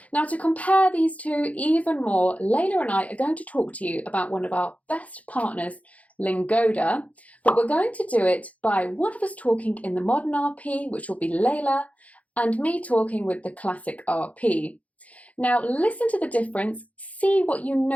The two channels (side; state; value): right; late; 0.068 ms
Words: Now, to compare these two even more, Leila and I are going to talk to you about one of our best partners, Lingoda, but we're going to do it by one of us talking in the modern RP, which will be Leila, and me talking with the classic RP. Now, listen to the difference, see what you